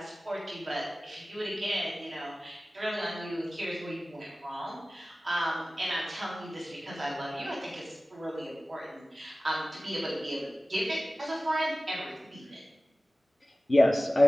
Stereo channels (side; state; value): both; normal; correlation 0.97